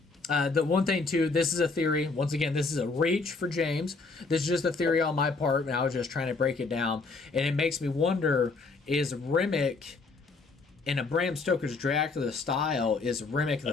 one thing too, this is a theory. Once again, this is a reach for James. This is just a theory on my part, and I was just trying to break it down. And it makes me wonder: is Remick, in a Bram Stoker's Dracula style, is Remick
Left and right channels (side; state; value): right; quieter; 4.0 dB